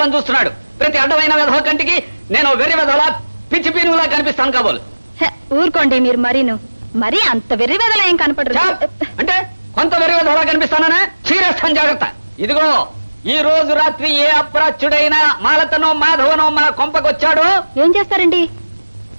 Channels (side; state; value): both; inverted; correlation -1.00